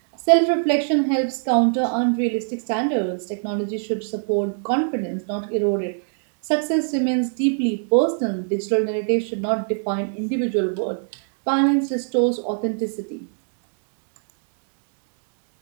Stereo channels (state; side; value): silent; left; digital silence